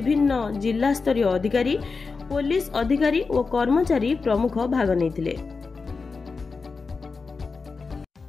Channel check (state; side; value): quieter; right; 4.5 dB